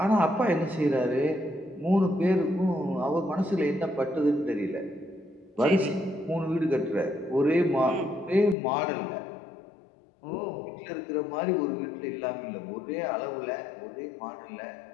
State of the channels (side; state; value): right; drops out; at 8.6 s